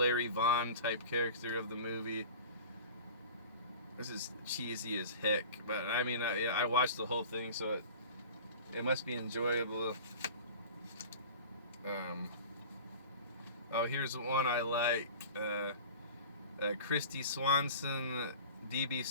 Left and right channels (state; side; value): inverted; both; correlation -0.40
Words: Vaughn type character of the movie. This is cheesy as heck, but I mean, I watched the whole thing, so it must be enjoyable. Oh, here's one I like. Christy Swanson, D.B.